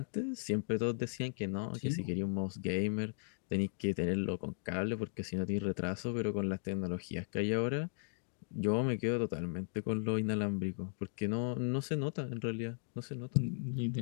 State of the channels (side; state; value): right; silent; digital silence